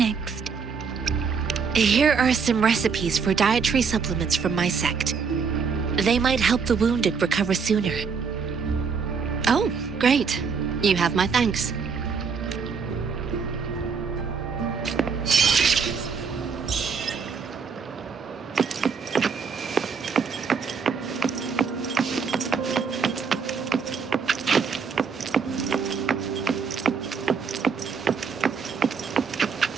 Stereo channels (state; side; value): quieter; left; 5.7 dB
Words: Here are some recipes for dietary supplements from my sect. They might help the wounded recover sooner. Oh, great. You have my thanks.